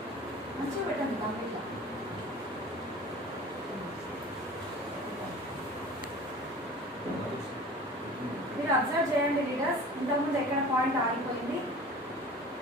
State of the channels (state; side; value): normal; both; correlation 0.41